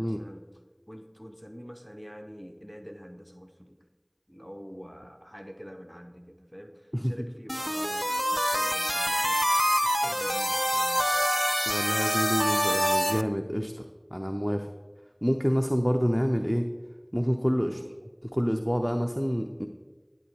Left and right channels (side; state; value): both; identical; correlation 1.00